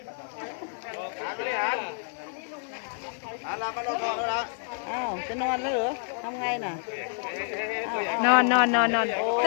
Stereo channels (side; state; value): right; silent; digital silence